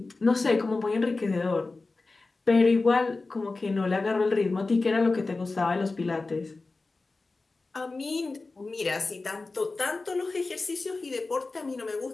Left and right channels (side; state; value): right; quieter; 3.6 dB